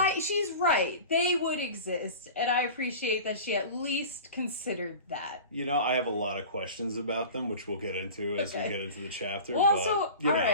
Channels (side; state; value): both; inverted; correlation -0.36